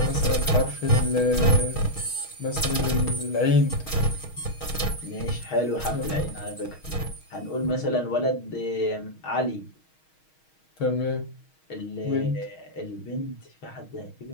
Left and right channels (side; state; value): right; late; 6.3 ms